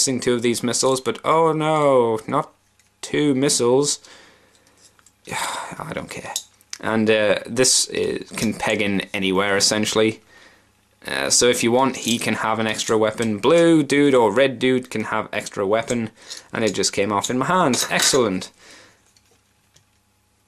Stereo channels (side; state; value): both; identical; correlation 1.00